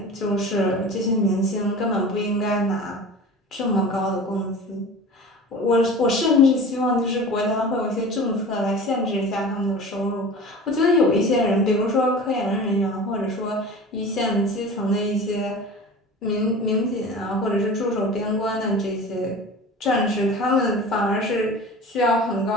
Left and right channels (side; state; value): both; normal; correlation 0.37